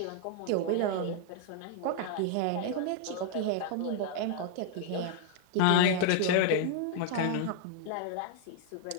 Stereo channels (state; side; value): different; both; correlation -0.01